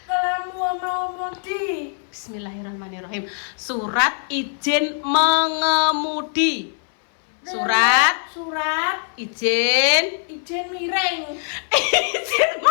Kalau mau mudi. Bismillahirrahmanirrahim. Surat izin mengemudi. Surat izin miring. izin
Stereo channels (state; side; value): silent; right; 61 dB below the other